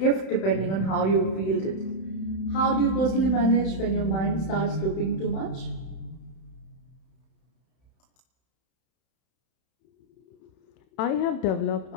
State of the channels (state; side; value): late; right; 31 ms